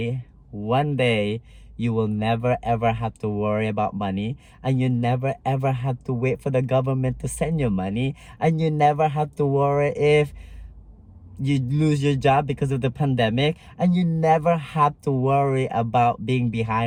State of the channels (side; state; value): both; identical; correlation 1.00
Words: you will never ever have to worry about money, and you never ever have to wait for the government to send you money, and you never have to worry if you lose your job because of the pandemic, and you never have to worry about being